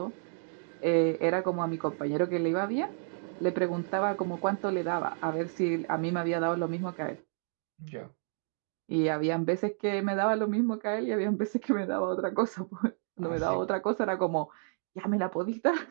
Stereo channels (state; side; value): silent; left; 57 dB below the other